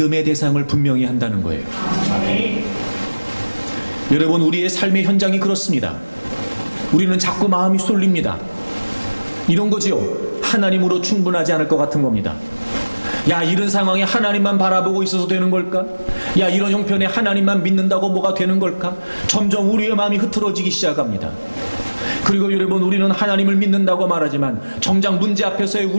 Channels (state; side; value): inverted; both; correlation -1.00